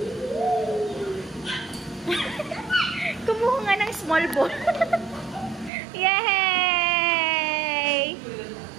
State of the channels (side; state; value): left; drops out; at 5.7 s